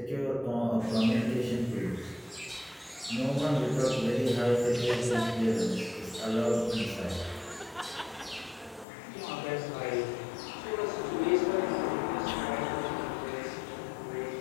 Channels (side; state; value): right; drops out; at 8.8 s